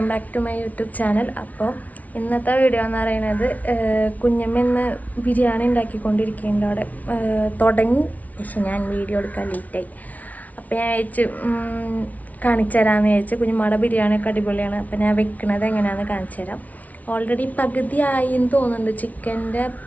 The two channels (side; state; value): right; late; 0.072 ms